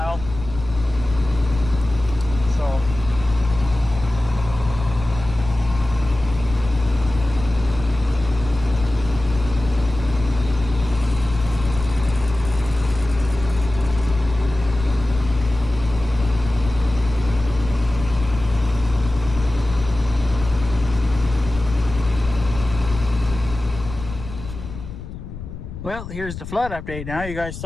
So well, here's the flood update now. You guys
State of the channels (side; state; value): left; noise; rumble, 11 dB below the sound